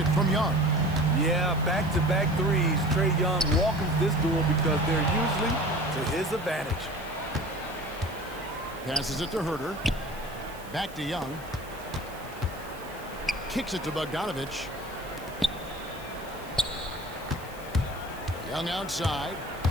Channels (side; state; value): right; noise; hiss, 21 dB below the sound